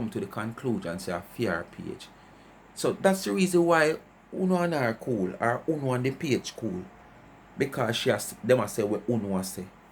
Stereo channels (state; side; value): identical; both; correlation 1.00